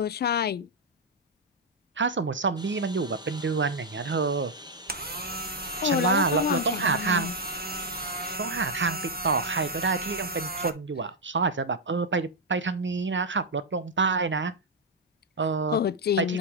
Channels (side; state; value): both; normal; correlation -0.02